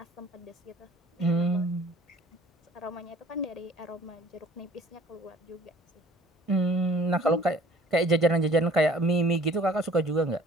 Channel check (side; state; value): both; normal; correlation 0.52